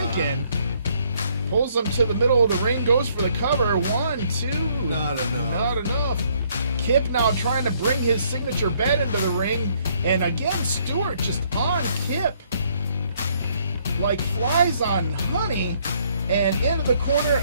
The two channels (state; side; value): inverted; both; correlation -0.67